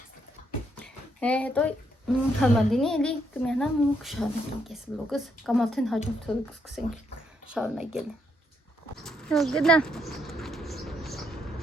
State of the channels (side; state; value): both; normal; correlation 0.75